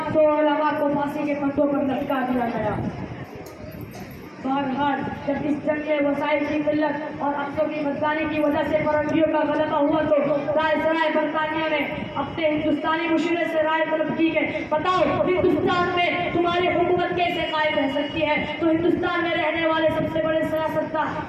उलमा को फांसी के फंदों पर लटका दिया गया। فرحان جب اس جنگ میں وسائل کی قلت اور افسوں کی بدکاری کی وجہ سے فرنگیوں کا غلبہ ہوا تو رائے سرائے برطانیہ نے اپنے ہندوستانی مشورے سے رائے طلب کی کہ بتاؤ ہندوستان میں تمہاری حکومت کیسے قائم رہ سکتی ہے. تو ہندوستان میں رہنے والے سب سے بڑے سیاستدان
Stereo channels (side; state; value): both; identical; correlation 1.00